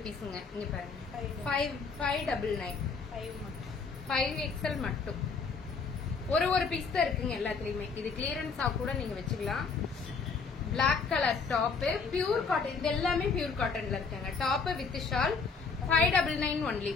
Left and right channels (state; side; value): quieter; right; 4.9 dB